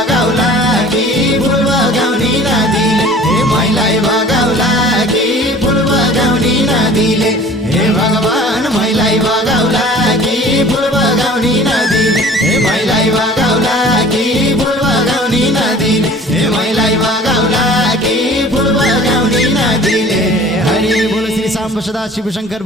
कि फुल बगाउने नदीले ए मैलाई बगाउला कि फुल बगाउने नदीले हे भगवान मैलाई बगाउला कि फुल बगाउने नदीले हे मैलाई बगाउला कि फुल बगाउने नदीले हे मैलाई बगाउला कि फुल बगाउने नदीले हरि बोल श्री सांब सदा शिव शंकर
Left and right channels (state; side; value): normal; both; correlation 0.46